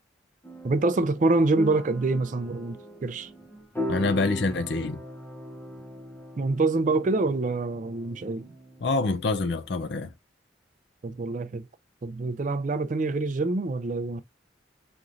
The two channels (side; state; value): both; normal; correlation 0.53